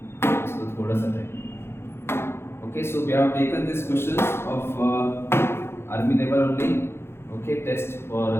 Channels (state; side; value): late; right; 0.12 ms